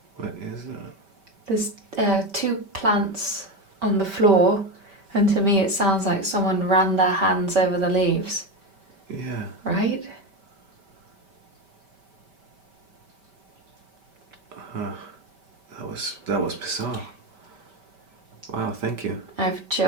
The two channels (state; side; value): late; left; 5.1 ms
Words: What is that? There's 2 plants on the floor, and to me it sounds like someone ran their hands over the leaves. Yeah. Right? That was bizarre. Wow, thank you. I have